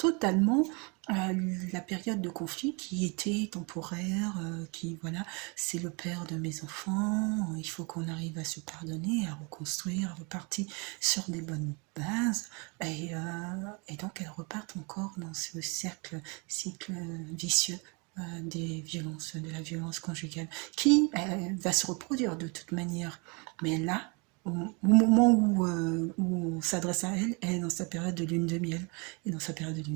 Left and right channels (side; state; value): left; quieter; 31.3 dB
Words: la période de conflit qui était temporaire, qui voilà, c'est le père de mes enfants, il faut qu'on arrive à se pardonner, à reconstruire, à repartir sur des bonnes bases, et donc elle repart encore dans ce cycle vicieux de la violence conjugale, qui va se reproduire de toute manière. Mais là, au moment où on s'adresse à elle, elle est dans sa période de lune de miel. Et dans sa période de